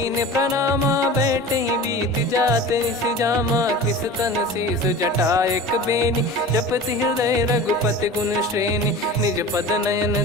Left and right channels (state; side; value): normal; both; correlation 0.36